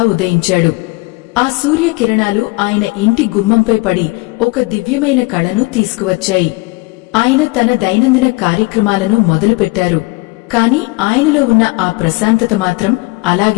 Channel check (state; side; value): quieter; right; 24.5 dB